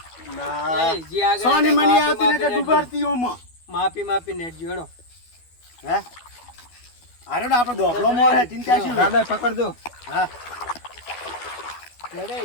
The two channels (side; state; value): right; late; 12 ms